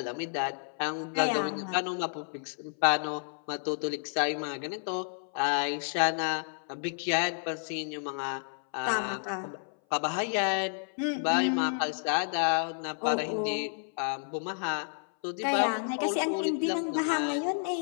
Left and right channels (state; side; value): silent; right; 57 dB below the other